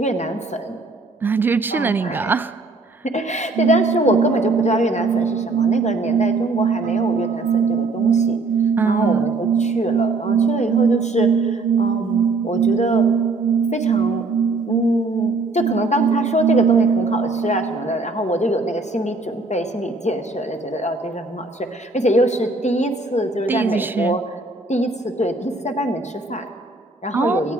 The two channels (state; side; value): quieter; left; 3.4 dB